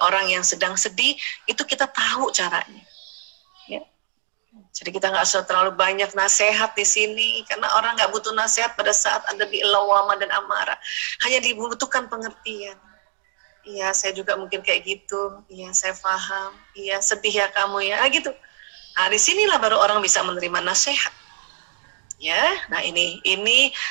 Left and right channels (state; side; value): silent; left; digital silence